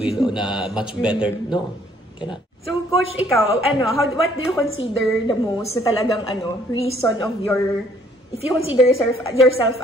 na much better. No, cannot. So, Coach, ikaw, what do you consider the most na talagang reason of your... If you consider yourself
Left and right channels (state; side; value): normal; both; correlation 0.63